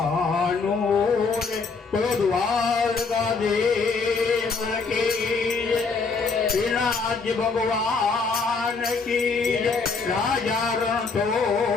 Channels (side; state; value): right; quieter; 4.6 dB